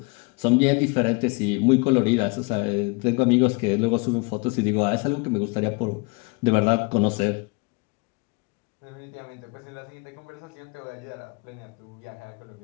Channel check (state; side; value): quieter; right; 29.4 dB